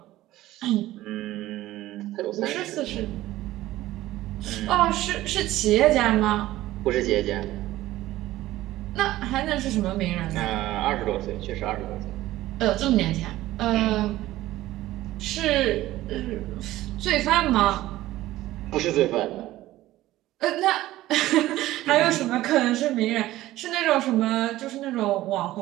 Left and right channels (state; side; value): quieter; left; 15.8 dB